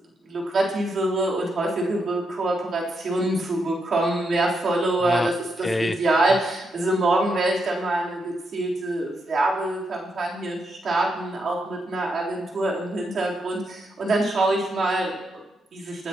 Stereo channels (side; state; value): both; normal; correlation 0.81